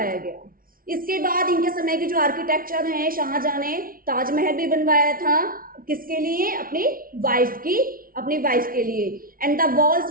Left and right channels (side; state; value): left; late; 0.42 ms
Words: गया। इसके बाद इनके समय के जो आर्किटेक्चर हैं, शाहजहां ने ताजमहल भी बनवाया था, किसके लिए, अपनी वाइफ के लिए। And the walls